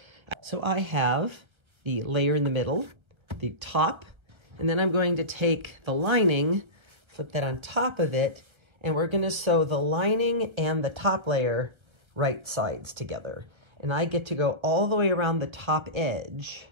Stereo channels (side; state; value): left; late; 1.3 ms